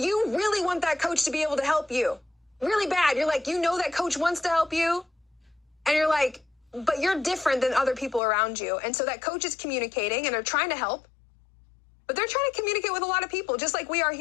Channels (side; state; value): right; drops out; at 8.2 s